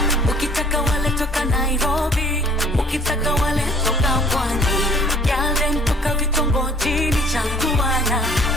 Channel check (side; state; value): both; normal; correlation 0.54